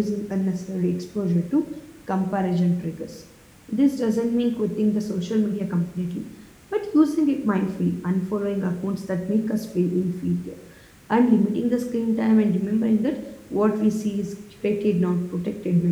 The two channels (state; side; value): identical; both; correlation 1.00